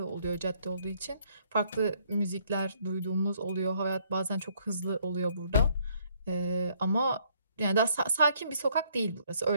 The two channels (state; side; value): inverted; both; correlation -0.66